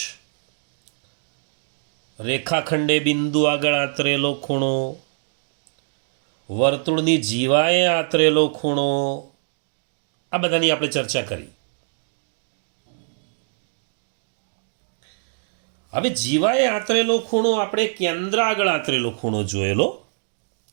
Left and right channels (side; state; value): left; silent; digital silence